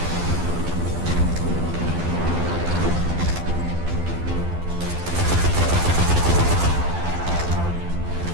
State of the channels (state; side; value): late; left; 12 ms